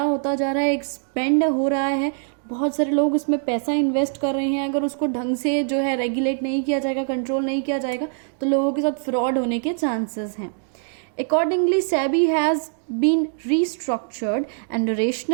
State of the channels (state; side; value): silent; left; digital silence